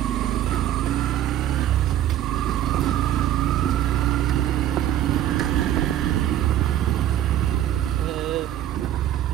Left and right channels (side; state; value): left; quieter; 11.9 dB